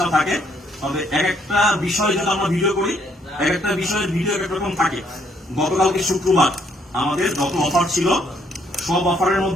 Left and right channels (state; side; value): normal; both; correlation 0.69